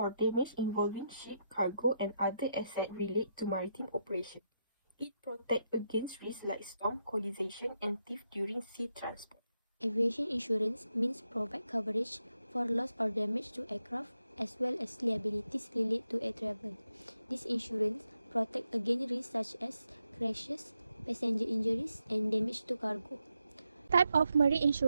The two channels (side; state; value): both; inverted; correlation -0.83